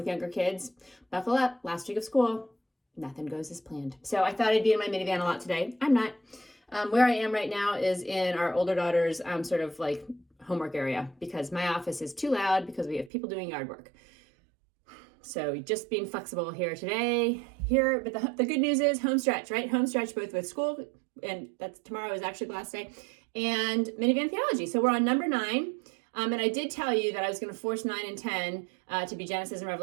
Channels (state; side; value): drops out; left; at 13.1 s